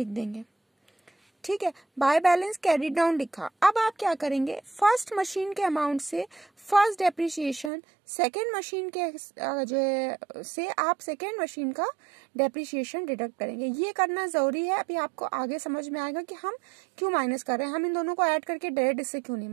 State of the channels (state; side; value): drops out; left; at 7.7 s